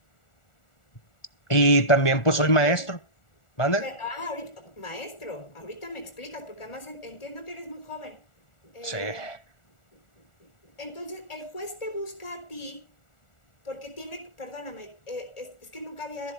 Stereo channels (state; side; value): late; right; 1.4 ms